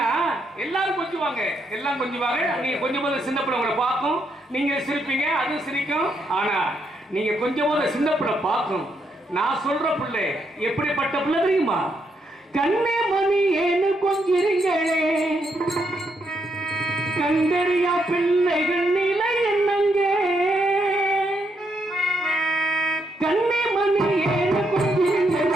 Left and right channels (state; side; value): normal; both; correlation 0.77